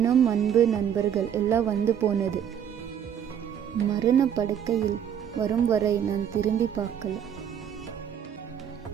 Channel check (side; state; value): left; quieter; 9.0 dB